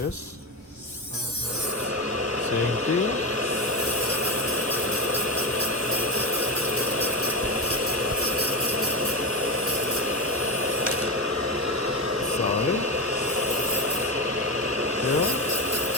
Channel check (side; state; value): both; normal; correlation 0.16